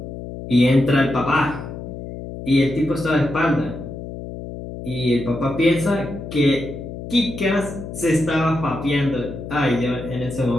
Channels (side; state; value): left; noise; hum, 10 dB below the sound